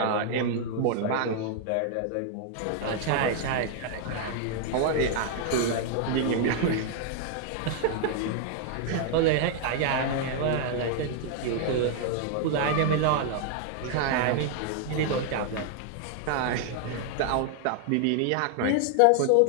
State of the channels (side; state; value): both; different; correlation 0.00